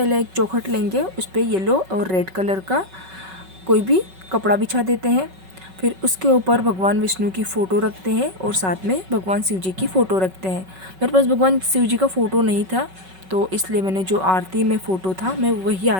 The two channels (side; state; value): left; late; 5.3 ms